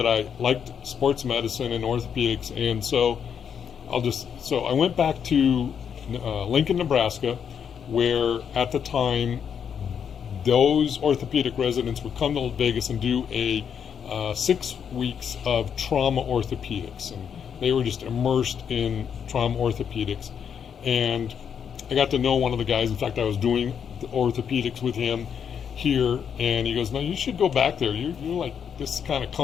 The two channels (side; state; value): right; quieter; 7.7 dB